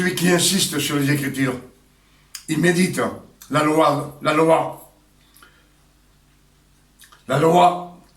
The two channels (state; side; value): identical; both; correlation 1.00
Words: qui insiste sur les Écritures. Il médite la loi. La loi,